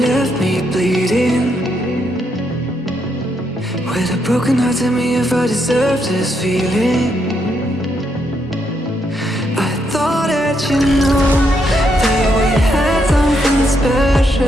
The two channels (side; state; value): both; normal; correlation 0.78